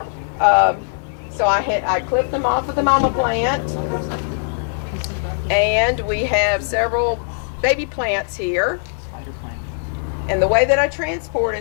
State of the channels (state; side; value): silent; right; digital silence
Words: So I clipped them off of the mama plant. And we have several baby plants here. And the way that I